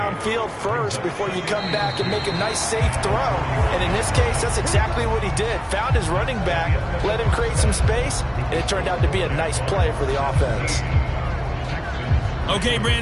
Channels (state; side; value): identical; both; correlation 1.00